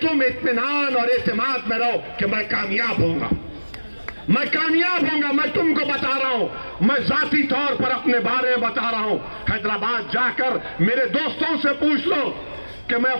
इत्मीनान और एतमाद में रहो कि मैं कामयाब होऊंगा, मैं कामयाब होऊंगा। मैं तुमको बता रहा हूं, मैं जाती तौर पर अपने बारे में बता रहा हूं। हैदराबाद जाकर मेरे दोस्तों से पूछ लो कि मैं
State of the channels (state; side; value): inverted; both; correlation -1.00